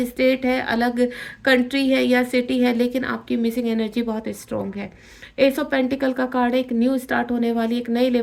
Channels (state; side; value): identical; both; correlation 1.00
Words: स्टेट है, अलग कंट्री है या सिटी है, लेकिन आपकी मिसिंग एनर्जी बहुत स्ट्रांग है। एस ऑफ पेंटिकल का कार्ड है, एक न्यू स्टार्ट होने वाली, एक नए